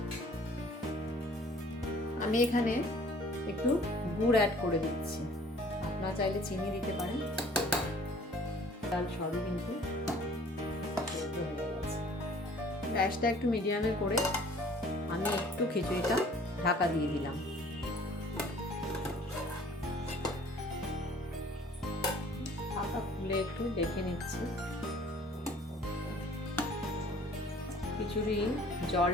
আমি এখানে একটু গুড় অ্যাড করে দিচ্ছি, আপনারা চাইলে চিনি দিতে পারেন। ডাল সবই কিন্তু সেদ্ধ হয়ে গেছে। গ্যাসটা একটু মিডিয়ামে করে আমি একটু খিচুড়িটা ঢাকা দিয়ে দিলাম। ঢাকা খুলে একটু দেখে নিচ্ছি। খিচুড়ি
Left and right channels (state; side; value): normal; both; correlation 0.53